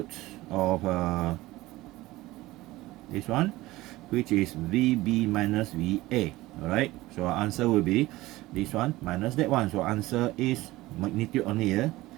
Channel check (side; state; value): left; quieter; 18.4 dB